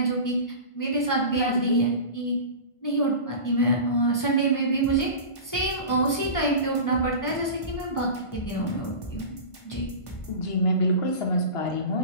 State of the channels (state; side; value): late; right; 1.5 ms